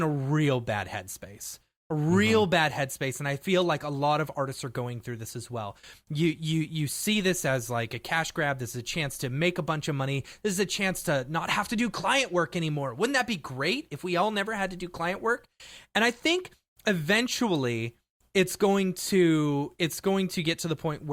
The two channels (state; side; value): identical; both; correlation 1.00